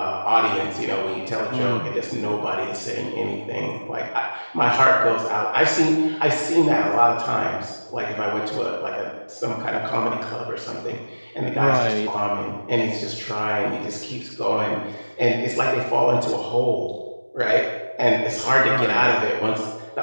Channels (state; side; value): inverted; both; correlation -1.00